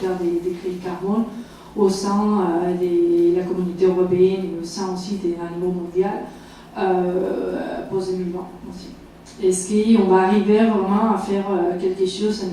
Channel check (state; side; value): identical; both; correlation 1.00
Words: des crédits carbone au sein de la communauté européenne et au sein aussi d'un niveau mondial post-2020 aussi. Est-ce qu'on va arriver vraiment à faire quelque chose à